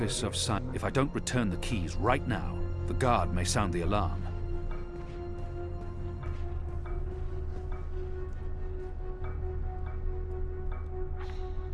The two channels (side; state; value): both; identical; correlation 1.00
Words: of If I don't return the keys right now, the guard may sound the alarm.